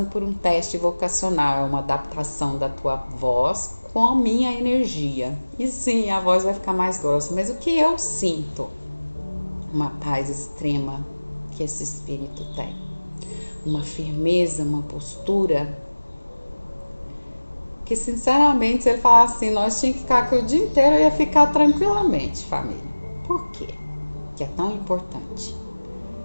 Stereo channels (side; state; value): both; inverted; correlation -1.00